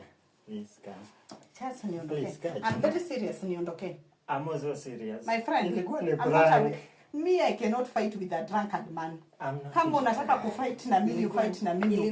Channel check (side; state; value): both; identical; correlation 1.00